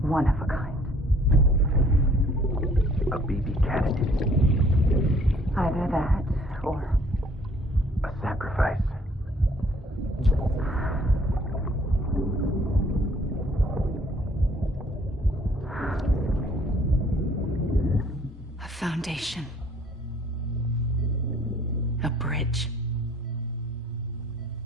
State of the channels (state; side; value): normal; both; correlation 0.58